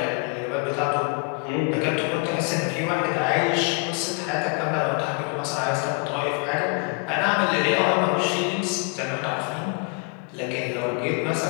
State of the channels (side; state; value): right; quieter; 34.0 dB